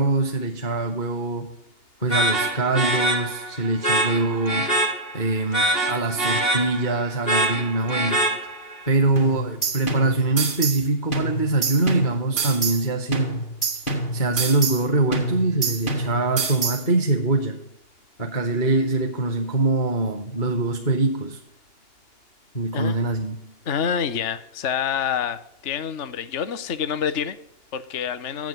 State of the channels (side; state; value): right; late; 2.8 ms